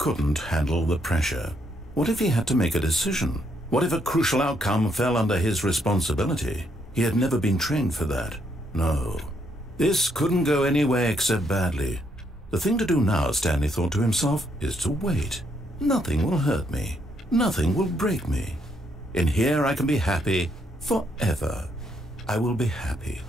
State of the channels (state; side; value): normal; both; correlation 0.74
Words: handle the pressure. What if he had to make a decision? What if a crucial outcome fell under his responsibility? He had never been trained for that. No. This couldn't go anywhere except badly. The thing to do now, Stanley thought to himself, is to wait. Nothing will hurt me. Nothing will break me. In here I can be happy forever. I will be happy.